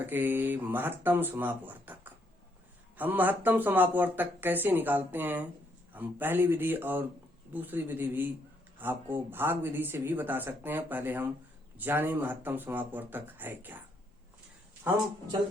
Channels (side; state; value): both; normal; correlation 0.73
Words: के महत्तम समापवर्तक। हम महत्तम समापवर्तक कैसे निकालते हैं, हम पहली विधि और दूसरी विधि भी आपको भाग विधि से भी बता सकते हैं। पहले हम जाने महत्तम समापवर्तक है क्या। हम